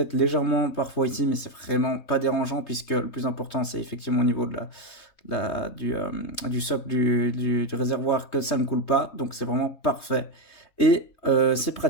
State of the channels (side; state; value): right; late; 3.2 ms